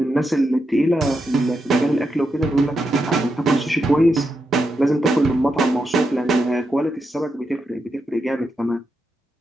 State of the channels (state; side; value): normal; both; correlation 0.85